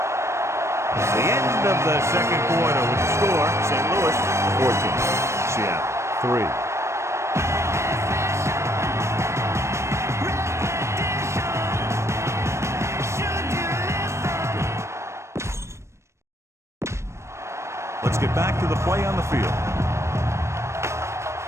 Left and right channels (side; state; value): left; late; 0.13 ms